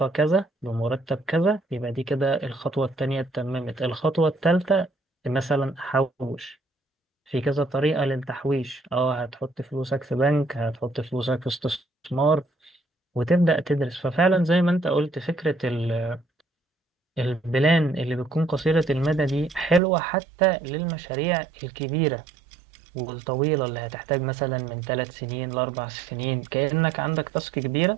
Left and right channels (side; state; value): left; drops out; at 19.8 s